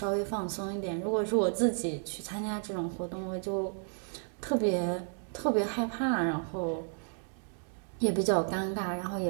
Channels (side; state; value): left; silent; 56 dB below the other